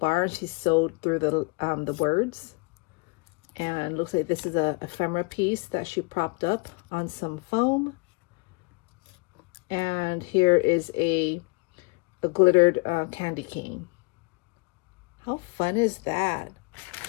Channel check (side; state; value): right; quieter; 30.1 dB